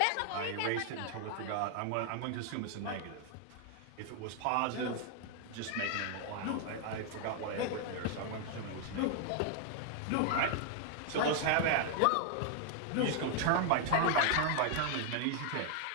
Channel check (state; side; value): different; both; correlation 0.00